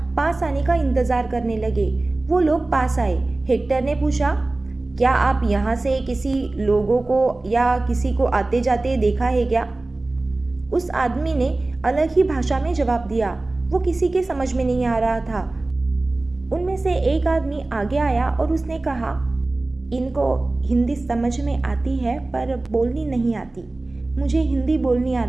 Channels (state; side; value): quieter; left; 3.0 dB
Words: पास आने का इंतजार करने लगे। वो लोग पास आए। हेक्टर ने पूछा, क्या आप यहाँ से किसी लोगों को या किसी को आते जाते देखा है क्या? उस आदमी ने अलग ही भाषा में जवाब दिया। वो किसी के समझ में नहीं आ रहा था। उनमें से एक आदमी आगे आया और उसने कहा, इनको हिंदी समझ में आती है पर बोलनी नहीं आती। मुझे हिंदी बोलनी